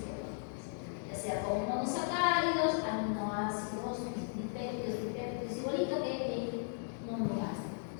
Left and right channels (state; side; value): silent; right; digital silence